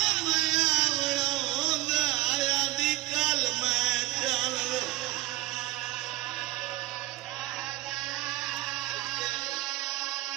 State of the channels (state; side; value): quieter; left; 17.9 dB